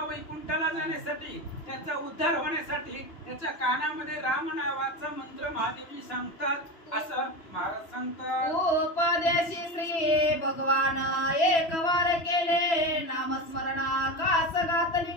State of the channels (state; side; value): late; right; 3.0 ms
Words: वैकुंठाला जाण्यासाठी, त्याचा उद्धार होण्यासाठी त्याच्या कानामध्ये राम नावाचा मंत्र महादेवजी सांगतात असं महाराज सांगतात। उपदेशी श्री भगवान एक वार केले नामस्मरणा